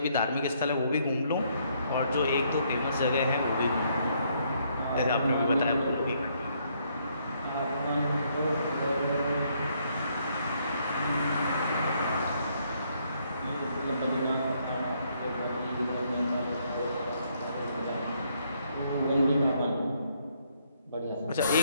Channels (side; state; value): both; inverted; correlation -0.71